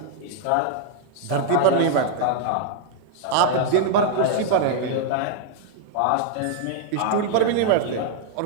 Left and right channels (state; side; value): different; both; correlation 0.00